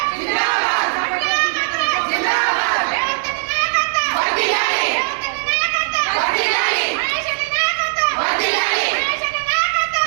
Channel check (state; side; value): silent; left; 59 dB below the other